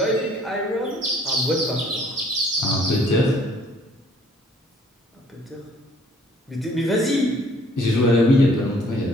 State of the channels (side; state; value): both; normal; correlation 0.59